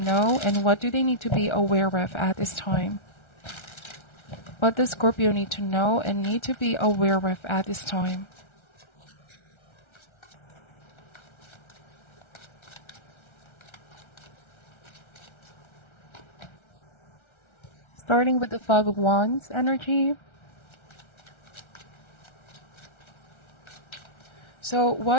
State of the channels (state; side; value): late; right; 1.3 ms